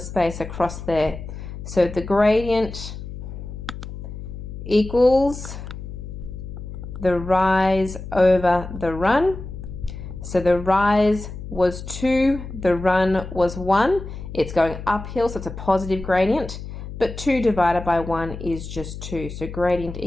across there. So the gradient equals the rise over the run. So the rise was 2, the run was 1. It's going uphill, so it's a positive gradient, but 2 divided by 1 is just 2, so gradient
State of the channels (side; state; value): left; noise; hum, 10 dB below the sound